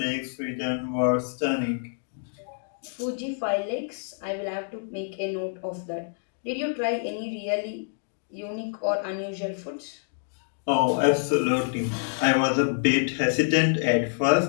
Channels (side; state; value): right; silent; digital silence